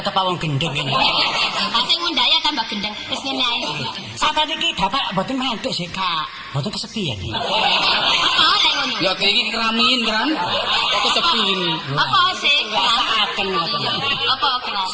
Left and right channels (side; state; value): both; identical; correlation 1.00